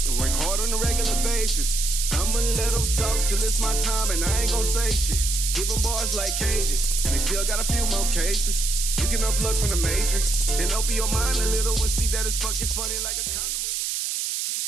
and work hard on a regular basis. I'ma let them talk till it's my time, and I ain't gon' say shit. Give them bars like cages, and they still got a few more cases. You can unplug from the matrix and open your mind a little and see that it's fucking funny like a condom riddle.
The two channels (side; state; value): right; noise; hiss, 1 dB below the sound